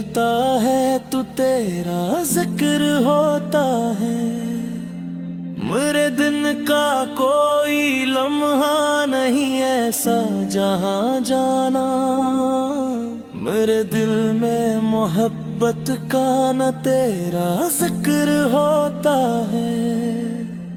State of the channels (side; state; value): both; identical; correlation 1.00